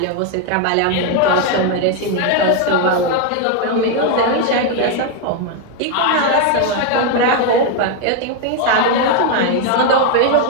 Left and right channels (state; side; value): different; both; correlation 0.01